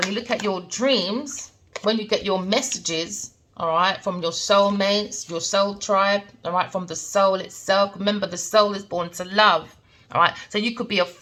you look at your dreams, when you get your messages, all right, from your soulmates, your soul tribe, all right, from the soul itself. Remember, the soul is born to love, all right? So you could be a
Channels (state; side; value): identical; both; correlation 1.00